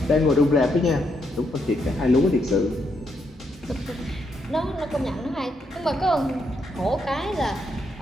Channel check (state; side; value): normal; both; correlation 0.78